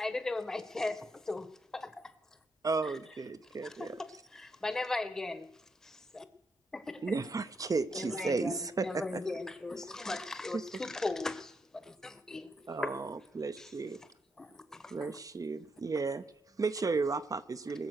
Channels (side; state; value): both; normal; correlation 0.79